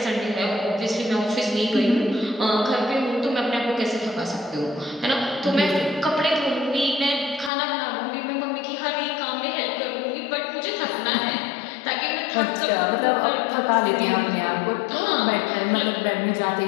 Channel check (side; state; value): right; drops out; at 7.5 s